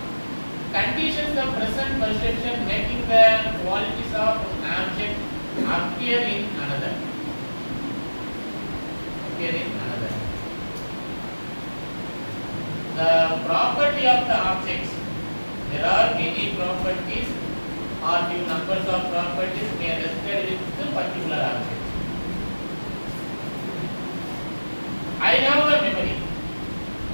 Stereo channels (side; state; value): both; inverted; correlation -1.00